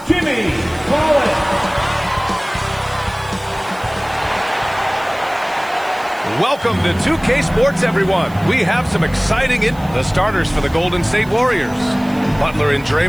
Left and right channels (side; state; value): right; noise; hiss, 24 dB below the sound